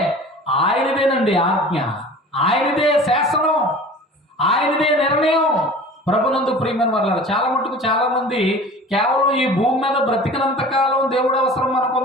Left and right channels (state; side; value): normal; both; correlation 0.41